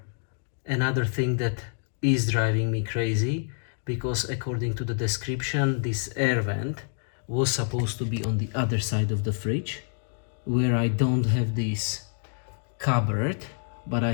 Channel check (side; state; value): right; silent; digital silence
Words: thing that is driving me crazy, because according to the description, this air vent was supposed to be on the other side of the fridge, where I don't have this cupboard, but I